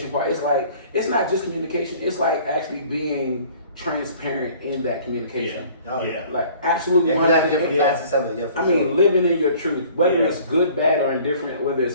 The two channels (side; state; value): both; inverted; correlation -0.51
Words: part? It's like it's not just communication. It's like actually being transparent in that communication. Oh, yeah. Like absolutely. Yeah, you have different 100%. facets of it. Yeah, for I sure. mean, living in your truth, whether Yeah. it's good, bad, or indifferent, whether